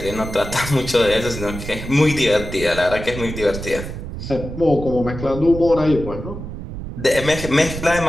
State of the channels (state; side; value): noise; right; rumble, 8 dB below the sound